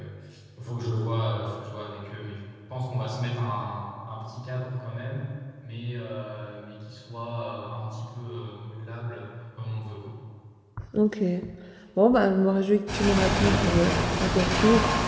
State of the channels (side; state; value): both; identical; correlation 1.00